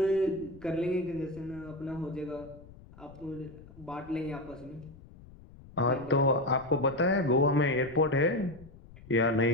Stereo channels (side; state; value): left; noise; rumble, 20 dB below the sound